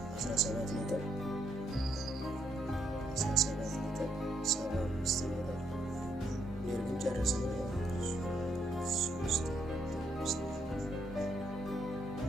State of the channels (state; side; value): normal; both; correlation 0.75